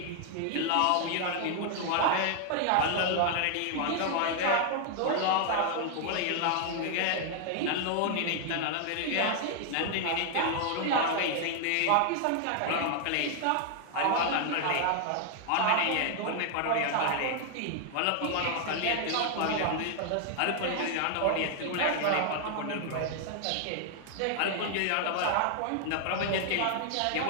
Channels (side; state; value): both; different; correlation 0.00